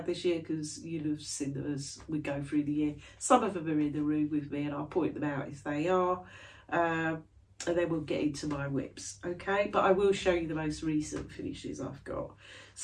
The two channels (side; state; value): both; identical; correlation 1.00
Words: this year because you'll have seen them as we go through the year. Some of them are in the room with me and I'll point them out if they are. And then we'll get into my whips, okay? But I will show you the most recent finishes I've got.